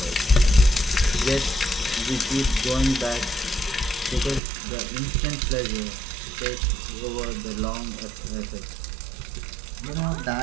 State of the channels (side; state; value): left; drops out; at 4.4 s